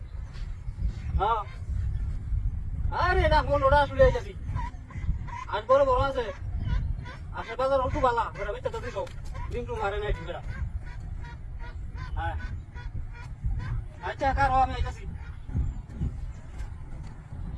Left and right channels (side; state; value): both; identical; correlation 1.00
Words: হ্যাঁ আরে না ফোন ওটা আসলে আইতাছি আজ বড় বড় আছে আসলে বাজার একটু বালা বেটা বেটা তো দিও ডিমটু মারে নাই ঠিক বেটা হ্যাঁ আচ্ছা কারো আমি আইতাছি